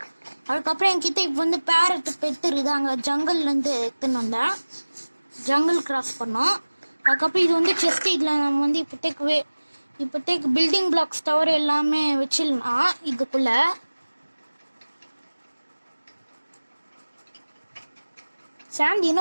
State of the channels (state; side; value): inverted; both; correlation -1.00